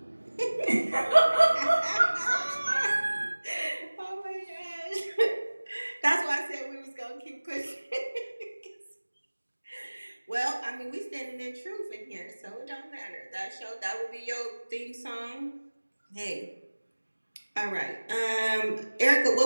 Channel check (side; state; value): both; inverted; correlation -1.00